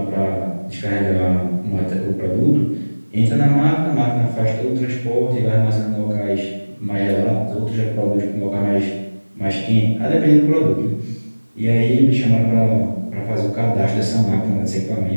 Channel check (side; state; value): both; inverted; correlation -1.00